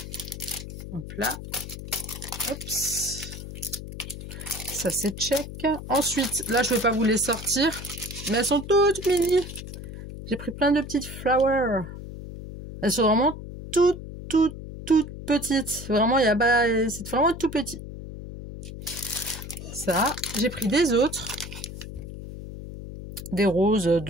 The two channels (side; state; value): left; noise; hum, 11 dB below the sound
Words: Hop là. Oups. Ça, c'est check. Ensuite, là, je vais pas vous les sortir, mais elles sont toutes mini. J'ai pris plein de petites flowers. Elles sont vraiment toutes petites. Vraiment, il y a pas, c'est vraiment tout petit. Ça, j'ai pris des autres. Des roses